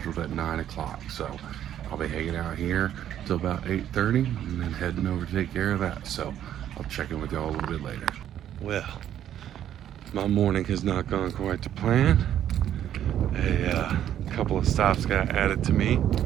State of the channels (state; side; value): quieter; left; 10.8 dB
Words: at 9 o'clock. So I'll be hanging out here till about 8:30 and then heading over to take care of that. So I'll check in with y'all a little bit later. Well, my morning has not gone quite to plan. A couple of stops got added to me